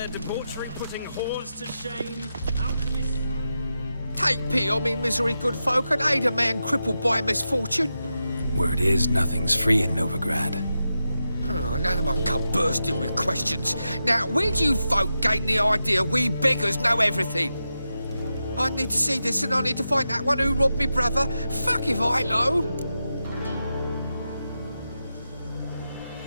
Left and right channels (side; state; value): both; inverted; correlation -0.89